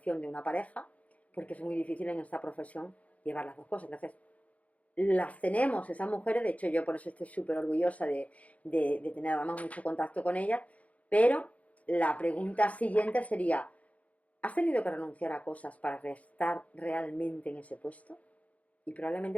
de una pareja, porque es muy difícil en esta profesión llevar las dos cosas. Entonces, las tenemos esas mujeres, de hecho yo por eso estoy súper orgullosa de tener además mucho contacto con ellas, pero la pregunta siguiente sería, ¿has tenido que renunciar a cosas para estar realmente en ese puesto? Y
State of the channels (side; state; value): right; late; 0.068 ms